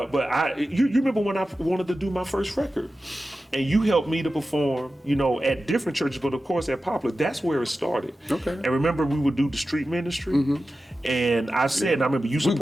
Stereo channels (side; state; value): both; normal; correlation 0.93